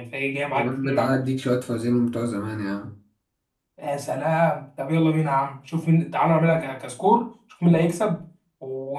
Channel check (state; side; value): identical; both; correlation 1.00